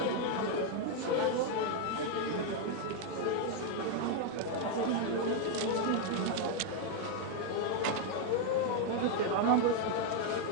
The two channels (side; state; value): both; different; correlation 0.00